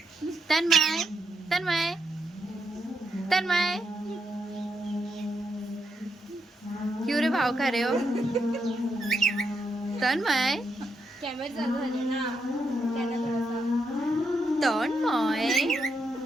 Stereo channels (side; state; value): both; normal; correlation 0.81